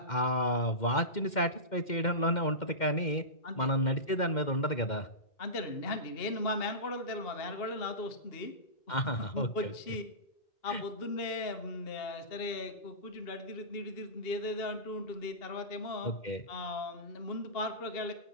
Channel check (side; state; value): right; late; 2.1 ms